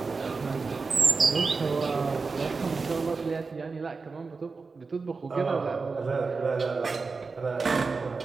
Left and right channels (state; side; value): quieter; left; 4.4 dB